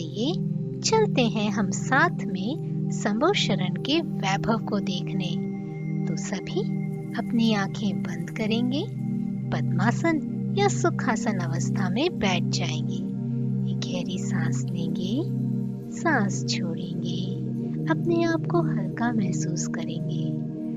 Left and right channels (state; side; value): identical; both; correlation 1.00